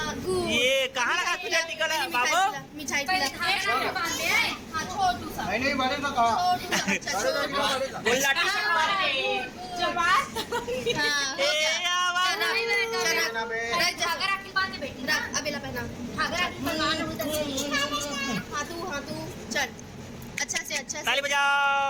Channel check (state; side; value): identical; both; correlation 1.00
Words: ये कहाँ लगा तुझे टीका लगा बाबू मिठाई हाँ छोटू सा नहीं बनेगा कहा गोला चल अच्छा से ताली